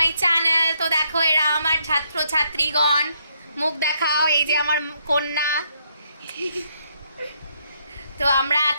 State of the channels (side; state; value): both; inverted; correlation -0.73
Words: channel. তো দেখো, এরা আমার ছাত্র ছাত্রীগণ, মুখ দেখাও। এই যে আমার কন্যা। তো আমরা